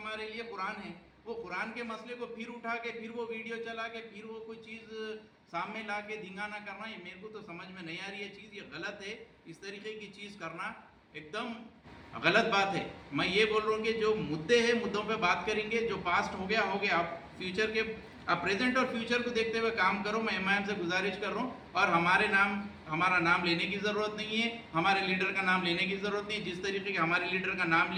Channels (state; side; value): identical; both; correlation 1.00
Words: लिए कुरान है, वो कुरान के मसले को फिर उठा के फिर वो वीडियो चला के फिर वो कोई चीज़ सामने ला के धिंगाना करना, ये मेरे को तो समझ में नहीं आ रही है चीज़, ये गलत है। इस तरीके की चीज़ करना एकदम गलत बात है। मैं ये बोल रहा हूँ कि जो मुद्दे हैं मुद्दों पे बात करेंगे, जो पास्ट हो गया हो गया। आप फ्यूचर के, आप प्रेजेंट और फ्यूचर को देखते हुए काम करो। मैं MIM से गुजारिश कर रहा हूँ, और हमारा नाम लेने की ज़रूरत नहीं है, हमारे लीडर का नाम लेने की ज़रूरत नहीं है। जिस तरीके के हमारे लीडर का नाम